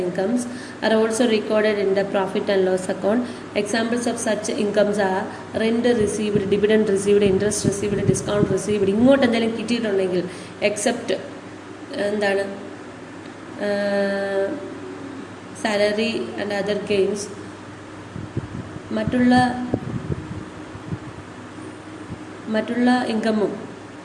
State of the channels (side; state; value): both; identical; correlation 1.00